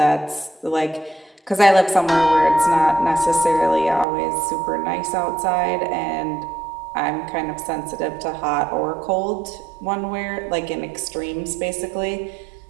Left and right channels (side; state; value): left; drops out; at 4.0 s